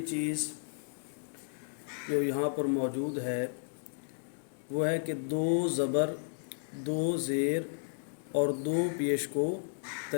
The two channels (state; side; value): silent; right; digital silence